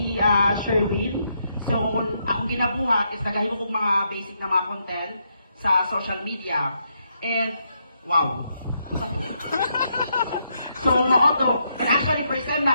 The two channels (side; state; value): both; inverted; correlation -0.78